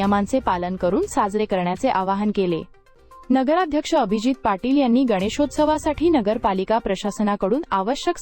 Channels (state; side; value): identical; both; correlation 1.00